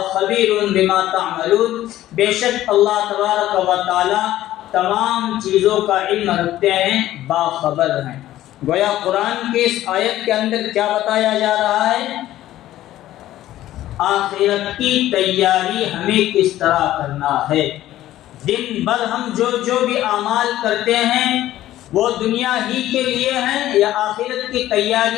خبیر بما تعملون، بے شک اللہ تبارک و تعالی تمام چیزوں کا علم رکھتے ہیں، باخبر ہیں۔ گویا قرآن کی اس آیت کے اندر کیا بتایا جا رہا ہے؟ آخرت کی تیاری ہمیں کس طرح کرنا ہے۔ دن بھر ہم جو بھی اعمال کرتے ہیں وہ دنیا ہی کے لیے ہیں یا آخرت کی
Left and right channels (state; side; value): quieter; right; 14.0 dB